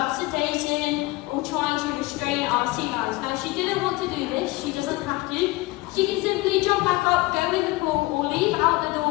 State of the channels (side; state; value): right; quieter; 20.5 dB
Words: sedating or trying to restrain our sea lions. Now she didn't want to do this, she doesn't have to. She can simply jump back up, go in the pool, or leave out the